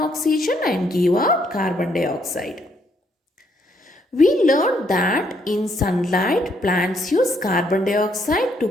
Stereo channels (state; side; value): normal; both; correlation 0.71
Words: and give out carbon dioxide. We learned that in sunlight, plants use carbon dioxide to